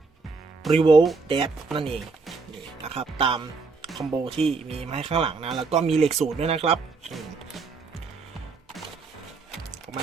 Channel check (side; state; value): left; quieter; 4.3 dB